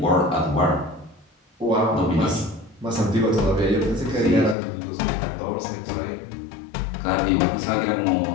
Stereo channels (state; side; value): drops out; right; at 4.5 s